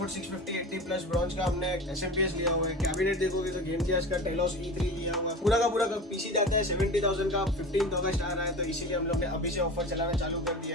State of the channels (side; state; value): both; normal; correlation 0.32